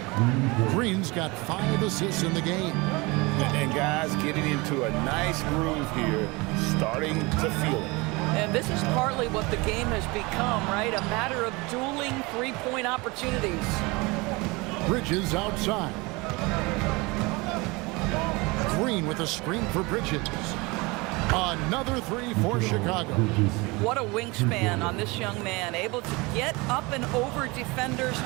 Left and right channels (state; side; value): quieter; left; 25.0 dB